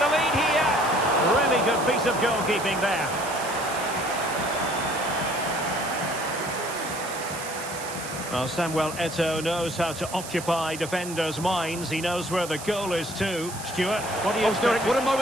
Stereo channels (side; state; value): right; noise; hiss, 11 dB below the sound